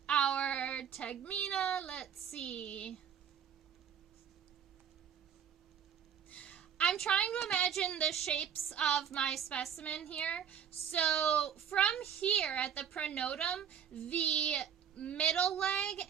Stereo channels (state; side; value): quieter; left; 8.3 dB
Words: our tegmina. Let's see. I'm trying to imagine the shapes of my specimen here. So from here at the pronotum, the middle leg